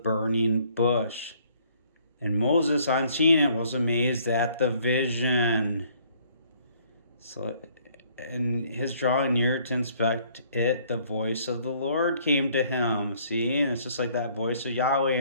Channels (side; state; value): both; inverted; correlation -0.62